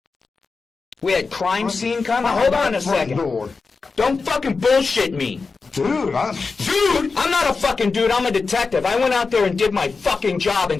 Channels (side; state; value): right; quieter; 4.4 dB